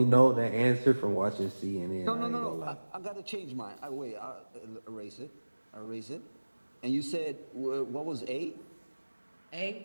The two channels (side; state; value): both; inverted; correlation -1.00